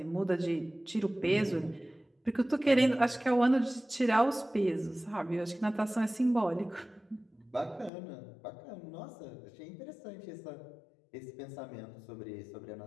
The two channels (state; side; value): drops out; right; at 7.9 s